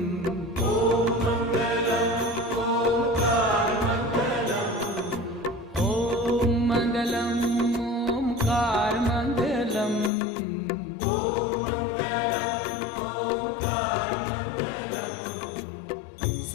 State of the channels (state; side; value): drops out; right; at 10.1 s